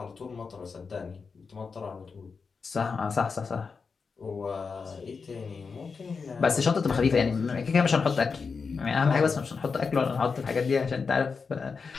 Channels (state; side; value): quieter; right; 5.1 dB